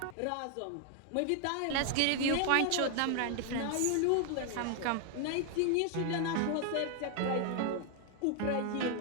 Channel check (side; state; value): both; different; correlation 0.00